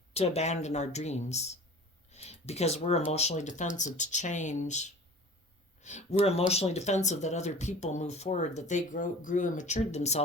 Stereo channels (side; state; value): both; normal; correlation 0.42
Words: to abandon our dreams because we're emotionally defensive to change. We're emotionally defensive that other people move forward, that they grew and matured